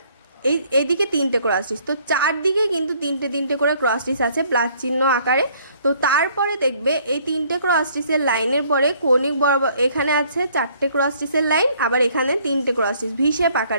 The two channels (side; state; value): both; inverted; correlation -0.62